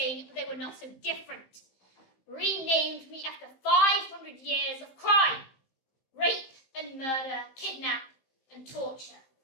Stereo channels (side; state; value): right; late; 15 ms